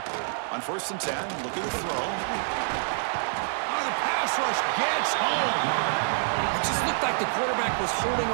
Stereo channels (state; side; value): silent; left; digital silence